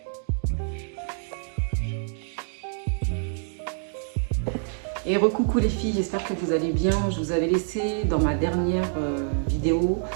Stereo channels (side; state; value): left; silent; 58 dB below the other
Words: Et recoucou les filles, j'espère que vous allez bien. Je vous avais laissé dans ma dernière vidéo